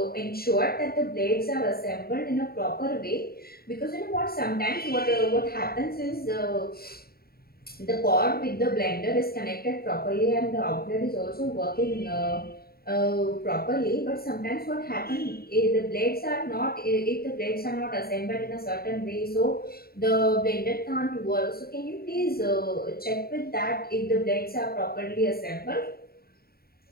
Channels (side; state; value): right; late; 0.45 ms